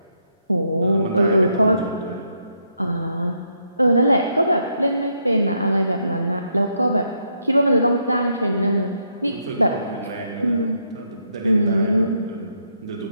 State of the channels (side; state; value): both; inverted; correlation -0.77